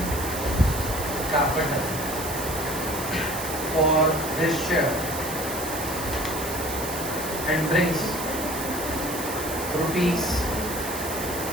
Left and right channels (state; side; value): noise; right; hiss, 7 dB below the sound